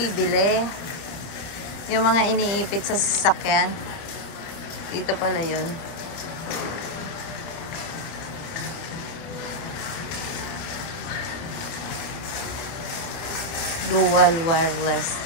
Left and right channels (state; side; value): late; right; 30 ms